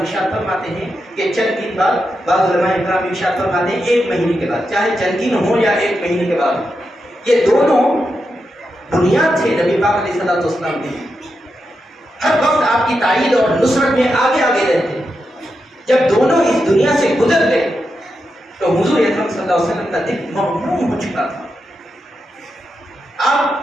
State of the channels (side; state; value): both; normal; correlation 0.86